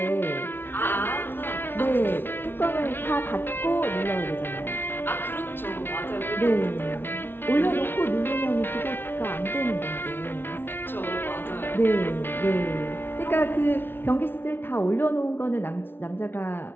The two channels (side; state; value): right; late; 0.10 ms